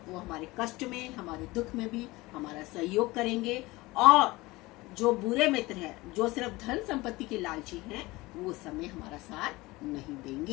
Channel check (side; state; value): right; quieter; 21.0 dB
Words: वो हमारे कष्ट में, हमारे दुख में भी हमारा सहयोग करेंगे, और जो बुरे मित्र हैं, जो सिर्फ धन संपत्ति के लालची हैं, वो समय हमारा साथ नहीं